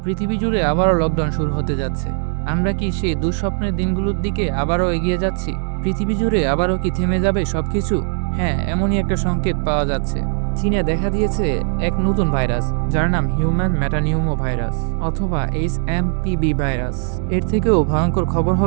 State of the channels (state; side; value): silent; left; digital silence